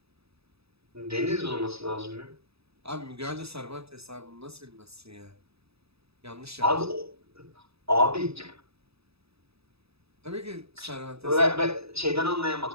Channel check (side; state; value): left; late; 0.78 ms